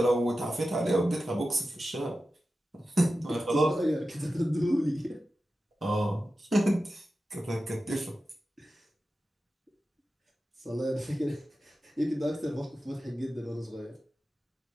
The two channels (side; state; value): both; normal; correlation 0.93